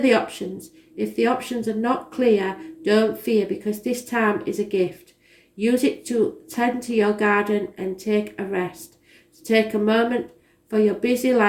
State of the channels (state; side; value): identical; both; correlation 1.00